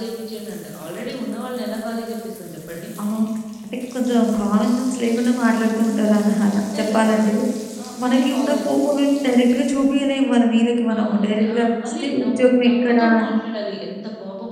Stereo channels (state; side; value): identical; both; correlation 1.00